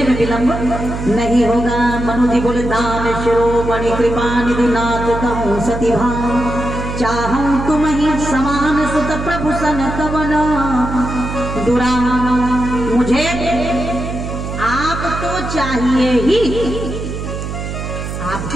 में विलंब नहीं होगा। मनु जी बोले दान शिरोमणि कृपा निधि नाथ कहूँ सती भाव, चाहूं तुम ही समान सुत प्रभु सन कवन दुरा। मुझे आप तो चाहिए ही,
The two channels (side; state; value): right; noise; hum, 6 dB below the sound